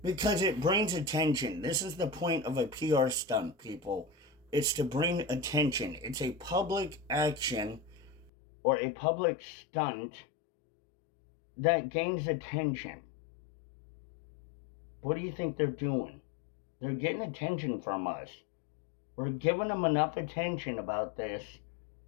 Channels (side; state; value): right; drops out; at 8.3 s